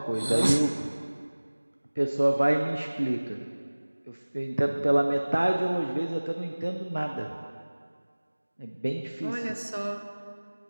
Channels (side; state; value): both; inverted; correlation -1.00